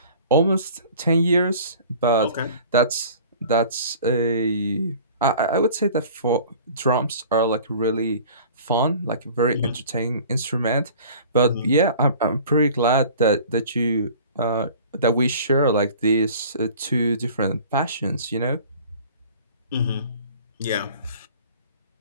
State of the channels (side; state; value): both; inverted; correlation -0.46